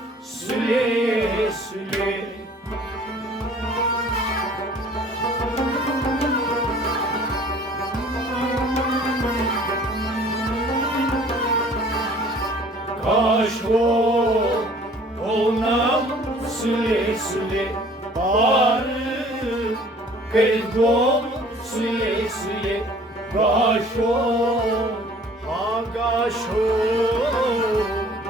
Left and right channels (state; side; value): normal; both; correlation 0.52